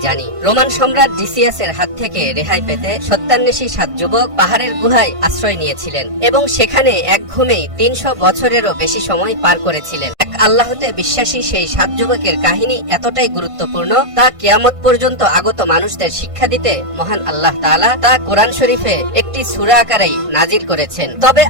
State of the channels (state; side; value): late; left; 1.5 ms